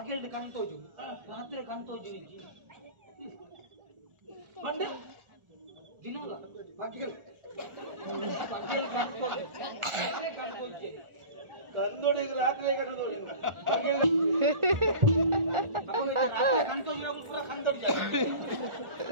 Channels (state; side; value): late; left; 1.4 ms